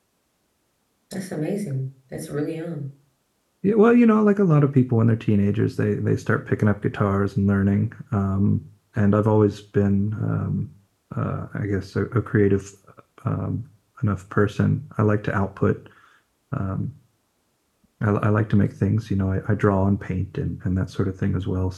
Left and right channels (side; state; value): both; identical; correlation 1.00